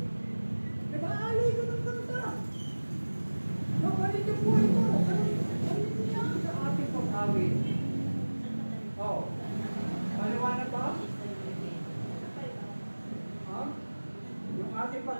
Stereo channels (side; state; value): both; inverted; correlation -1.00